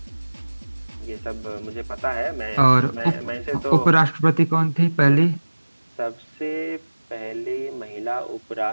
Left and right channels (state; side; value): inverted; both; correlation -1.00